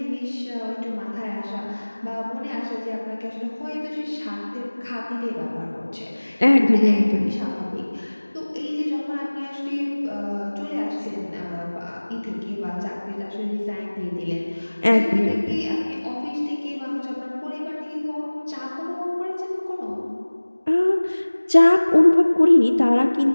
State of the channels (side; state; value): both; inverted; correlation -1.00